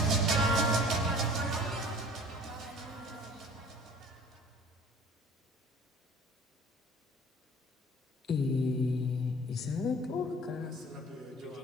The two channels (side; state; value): both; normal; correlation 0.47